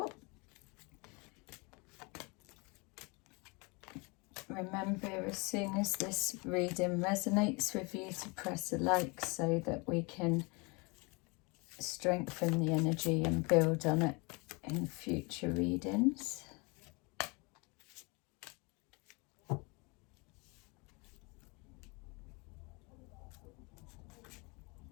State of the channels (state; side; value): quieter; right; 29.0 dB